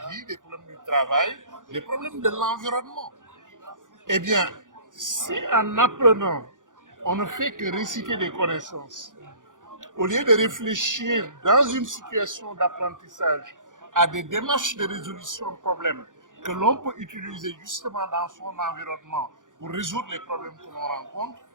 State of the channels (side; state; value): left; late; 0.88 ms